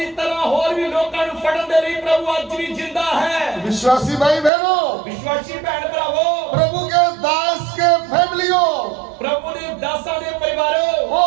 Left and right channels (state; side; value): drops out; left; at 4.5 s